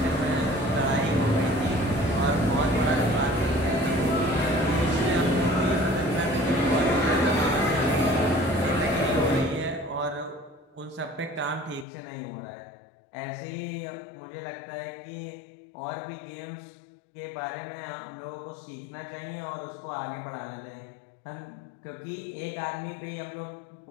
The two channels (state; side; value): drops out; right; at 11.9 s